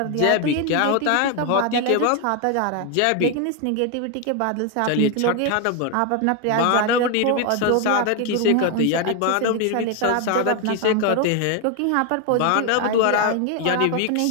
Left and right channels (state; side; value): different; both; correlation 0.01